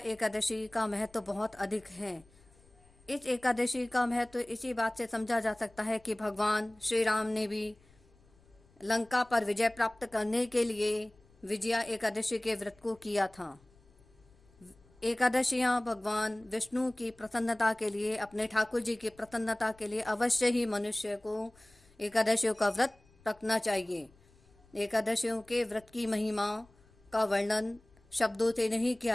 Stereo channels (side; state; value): left; noise; rumble, 29 dB below the sound